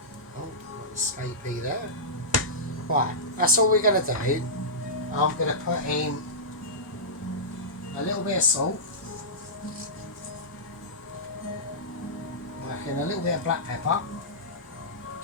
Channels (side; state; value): both; normal; correlation -0.14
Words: escapee there. Right, that's all we're going to do. I'm going to put in a little bit of salt, and a little bit of black pepper,